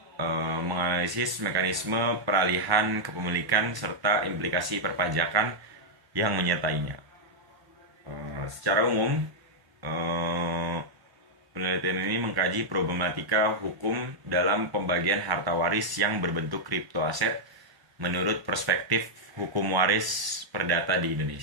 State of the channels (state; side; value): late; left; 1.1 ms